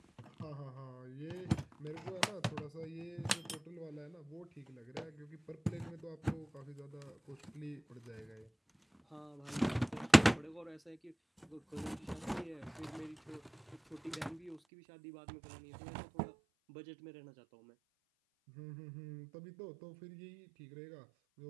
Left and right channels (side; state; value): left; drops out; at 14.6 s